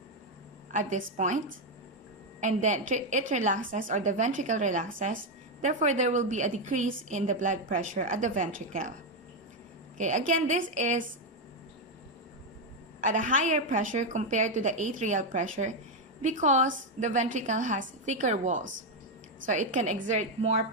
at this point, and then it relaxes, or the ventricle relaxes. Therefore, there will be a decrease in the blood pressure at the ventricle. Okay, again, this is at a higher pressure compared to the atrial pressure because the ventricle has thicker walls. So it can exert more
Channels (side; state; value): both; normal; correlation 0.05